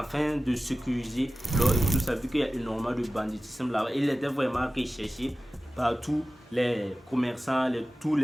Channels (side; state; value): both; normal; correlation 0.95